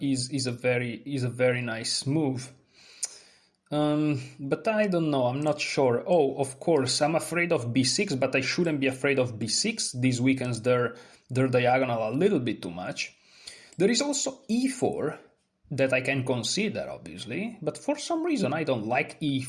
very nice move. But I don't know, I'm not sure. Oh, of course, I'm afraid of b6, but I shouldn't be afraid of b6. This weakens their diagonal a little bit too much. There is also e4 that I can consider, obviously, but for some reason I don't like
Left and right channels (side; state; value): both; identical; correlation 1.00